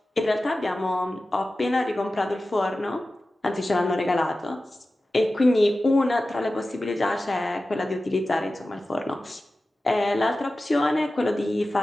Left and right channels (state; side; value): normal; both; correlation 0.95